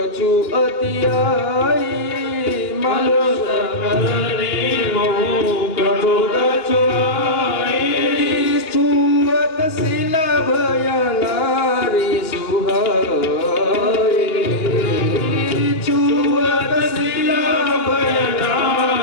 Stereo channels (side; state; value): right; late; 2.9 ms